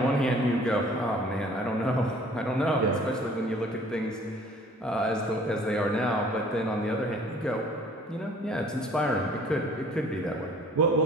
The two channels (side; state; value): both; normal; correlation 0.53